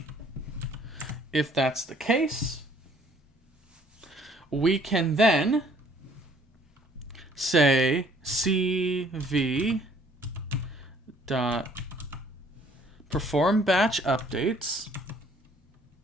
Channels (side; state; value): both; normal; correlation 0.59